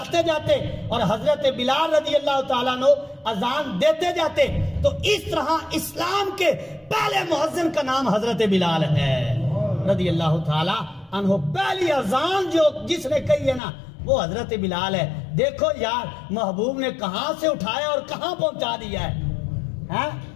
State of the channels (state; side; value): drops out; right; at 13.6 s